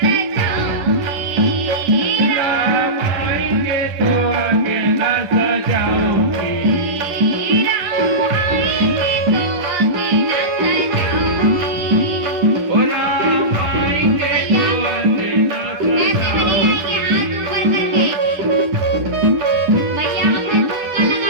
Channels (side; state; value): left; late; 10 ms